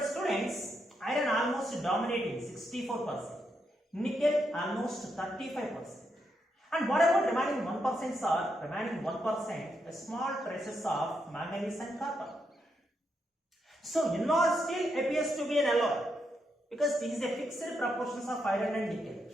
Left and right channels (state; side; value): normal; both; correlation 0.81